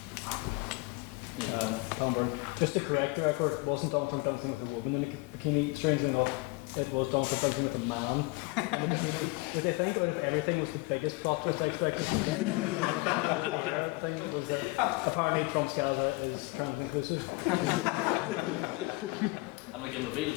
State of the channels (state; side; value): quieter; right; 24.7 dB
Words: Just to correct the record, it wasn't Donald Trump dancing with a woman in a bikini. Strangely enough, it was Donald Trump dancing with a man in a bikini. Did they think out of everything was the biggest plot twist I expected? Thing was that apparently Trump's Gaza is trans inclusive. And we can reveal